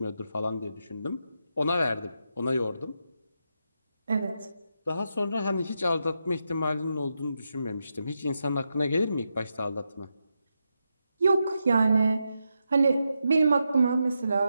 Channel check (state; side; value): inverted; both; correlation -0.86